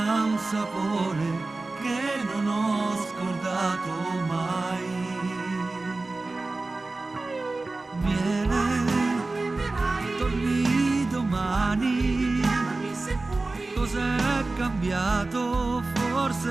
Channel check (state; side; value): quieter; left; 3.3 dB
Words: un sapore che non ho scordato mai. Miele, torni domani. Cos'è cambiato?